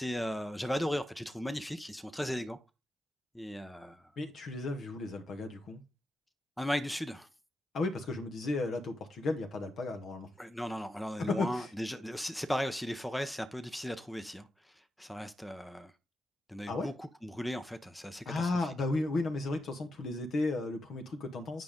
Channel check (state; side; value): normal; both; correlation 0.87